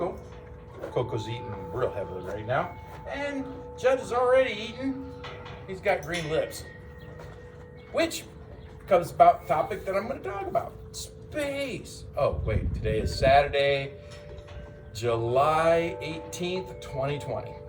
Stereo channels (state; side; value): identical; both; correlation 1.00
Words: Coco's eating real heavily right now. And Judd is already eating. He's got green lips. Which comes about the topic that I'm going to talk about. Space. Oh, wait. Today is Saturday, July 18th, 2020.